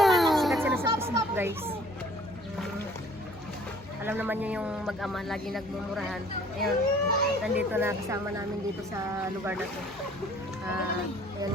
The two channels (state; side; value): normal; both; correlation 0.54